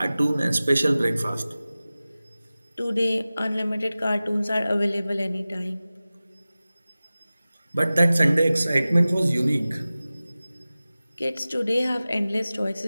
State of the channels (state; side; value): inverted; both; correlation -0.97